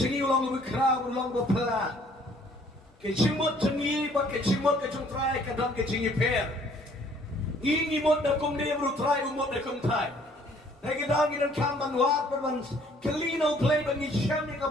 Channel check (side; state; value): both; normal; correlation 0.59